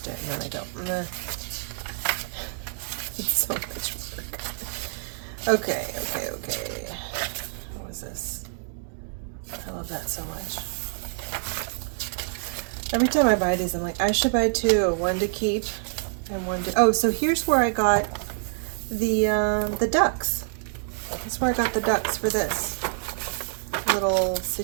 it, and then I go, meh. It's so much work. Okay. What was this? I love that so much. Every time I buy these, I'm like, I should buy two, one to keep and one to, oh, so here's where I got the ducks. That's where I got the ducks for this little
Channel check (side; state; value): left; silent; digital silence